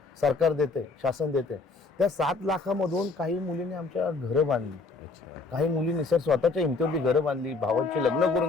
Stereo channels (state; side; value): quieter; right; 3.8 dB